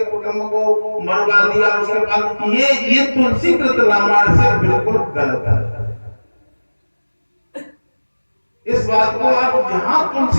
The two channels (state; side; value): inverted; both; correlation -1.00